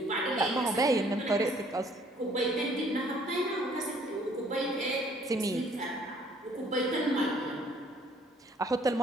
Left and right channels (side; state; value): both; normal; correlation 0.60